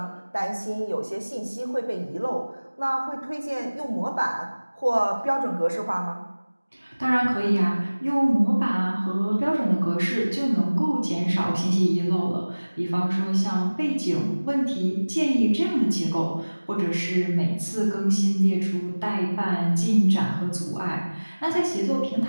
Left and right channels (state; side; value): inverted; both; correlation -1.00